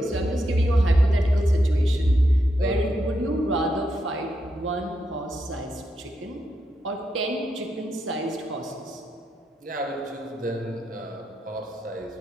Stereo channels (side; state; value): both; normal; correlation 0.83